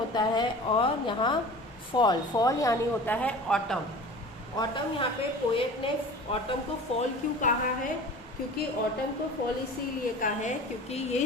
है और यहाँ फॉल। फॉल यानी होता है ऑटम। ऑटम, यहाँ पे पोएट ने ऑटम को फॉल क्यों कहा है? क्योंकि ऑटम को फॉल इसीलिए कहा है क्योंकि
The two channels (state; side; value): normal; both; correlation 0.39